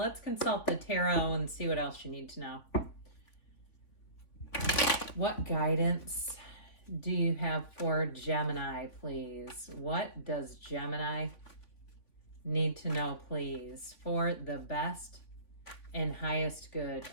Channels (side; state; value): right; late; 3.5 ms